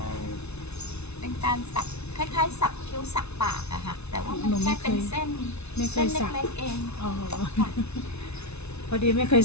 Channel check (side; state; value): right; late; 0.81 ms